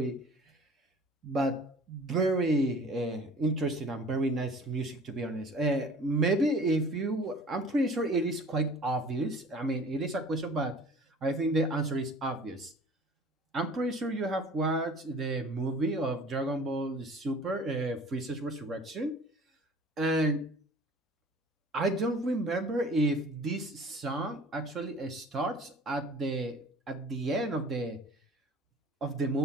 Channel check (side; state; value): both; normal; correlation 0.47